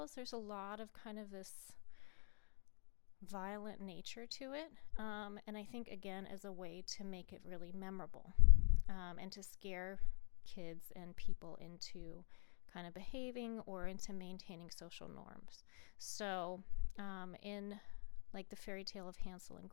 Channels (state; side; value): quieter; right; 38.2 dB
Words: there's a lot of kind of this violent nature to it. And I think, again, as a way to make it really memorable and to scare kids and people into kind of behaving or into maintaining social norms. So in like the fairy tale of Hansel and